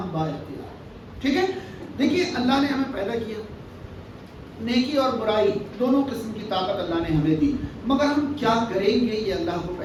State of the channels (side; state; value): both; identical; correlation 1.00